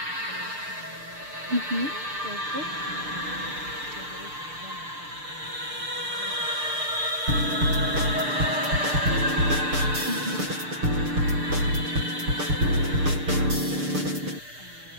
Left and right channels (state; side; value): late; left; 6.7 ms